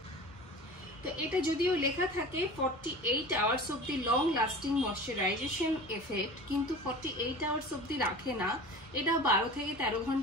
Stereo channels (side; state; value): both; normal; correlation 0.37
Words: তো এটা যদিও লেখা থাকে 48 hours of the long lasting moisturisation effect, কিন্তু 48 আওয়ার্স অব্দি রাখে না, এটা 12 থেকে 13